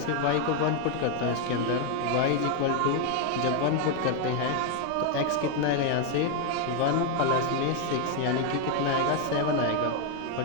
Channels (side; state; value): both; different; correlation 0.01